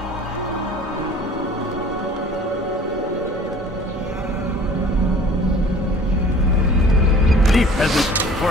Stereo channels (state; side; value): normal; both; correlation 0.48